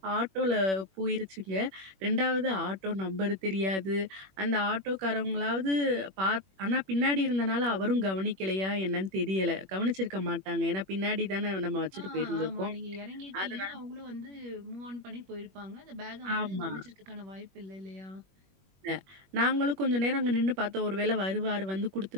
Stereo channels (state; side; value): late; left; 21 ms